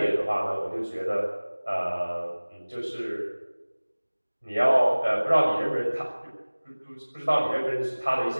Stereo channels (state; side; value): inverted; both; correlation -1.00